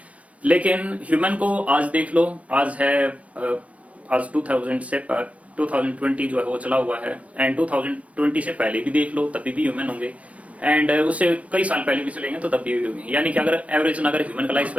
लेकिन ह्यूमन को आज देख लो, आज है आज 2020 जो है वो चला हुआ है, एंड 2020 से पहले भी देख लो तभी भी ह्यूमन होंगे, एंड उससे कई साल पहले भी चलेंगे तो तब भी होंगे। यानी कि अगर एवरेज अगर ह्यूमन का लाइफ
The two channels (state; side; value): late; left; 0.065 ms